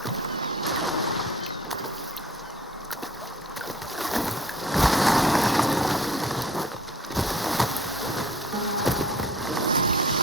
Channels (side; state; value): both; normal; correlation 0.51